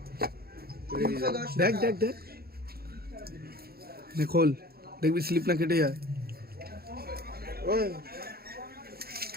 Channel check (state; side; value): late; left; 0.45 ms